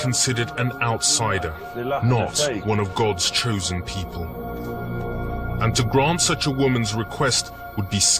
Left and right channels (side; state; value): both; identical; correlation 1.00